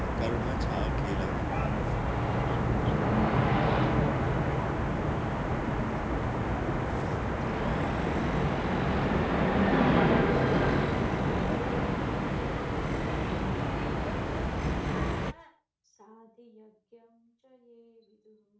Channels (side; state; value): both; identical; correlation 1.00